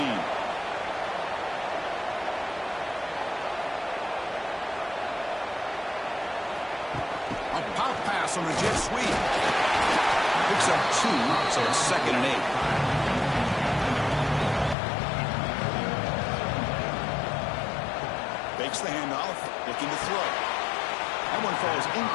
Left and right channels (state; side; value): drops out; right; at 14.8 s